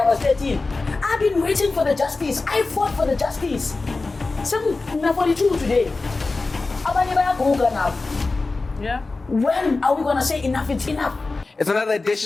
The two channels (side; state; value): right; quieter; 3.6 dB